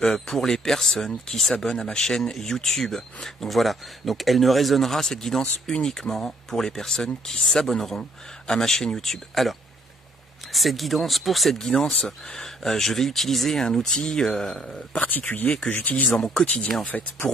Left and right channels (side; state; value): both; normal; correlation 0.65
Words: pour les personnes qui s'abonnent à ma chaîne YouTube. Donc voilà, donc elle ne résonnera cette guidance uniquement pour les personnes qui s'abonneront à ma chaîne YouTube. Alors, pour cette guidance, je vais utiliser un outil particulier que j'utilise dans mon quotidien en fait,